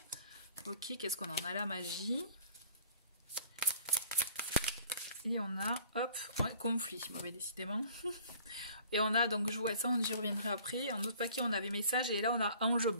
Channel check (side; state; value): both; inverted; correlation -0.52